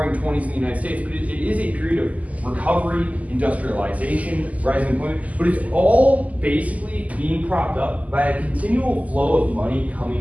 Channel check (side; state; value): left; late; 0.074 ms